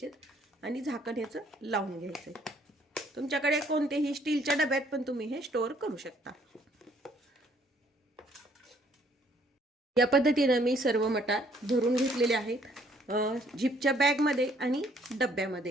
आणि झाकण याचं लावून घ्यायचं। तुमच्याकडे कोणतेही स्टीलच्या डब्यात पण तुम्ही हे स्टोअर करू शकता। या पद्धतीने मी सर्व मटार भरून घेतलेले आहेत झिपच्या बॅग मध्ये आणि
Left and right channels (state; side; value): normal; both; correlation 0.63